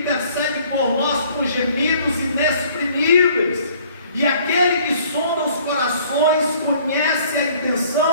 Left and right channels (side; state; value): both; inverted; correlation -0.56